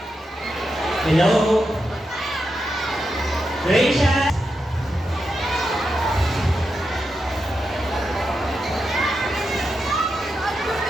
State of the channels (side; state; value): both; normal; correlation 0.87